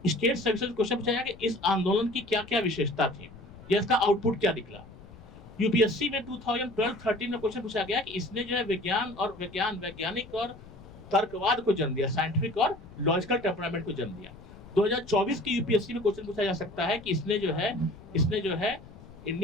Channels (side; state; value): left; noise; rumble, 19 dB below the sound